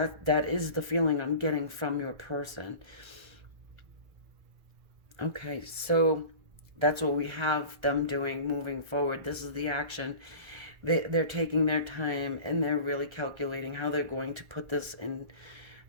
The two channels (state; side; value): late; left; 1.3 ms